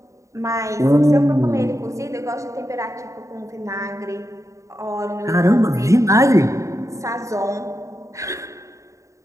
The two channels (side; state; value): left; late; 0.15 ms